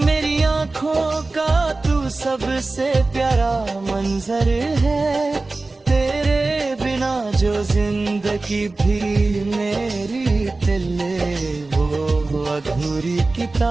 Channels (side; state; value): left; quieter; 3.3 dB